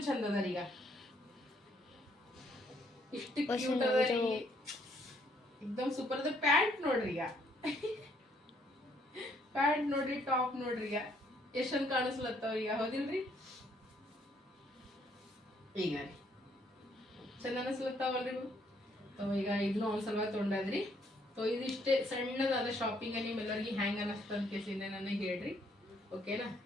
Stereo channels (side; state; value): both; normal; correlation 0.68